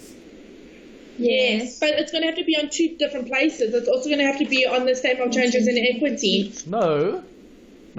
Yes, but it's going to have to be on two different places. It's also going to have to be on the statement of changes in equity. No.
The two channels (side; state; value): both; identical; correlation 1.00